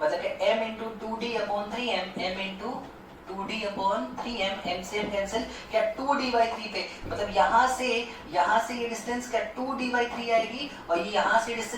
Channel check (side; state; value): both; identical; correlation 1.00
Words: मतलब कि m into 2d upon 3m, m into 2d upon 3m, m से m कैंसिल, क्या 2d बाई 3 पे, मतलब यहाँ से ये डिस्टेंस क्या 2d बाई 3 आएगी और ये यहाँ से